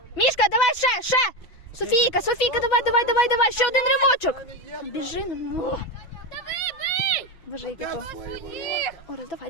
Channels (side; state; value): right; late; 6.0 ms